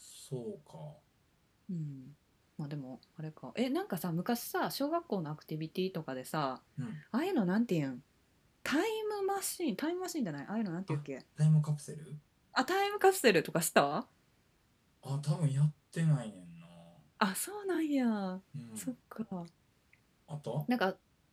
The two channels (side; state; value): both; identical; correlation 1.00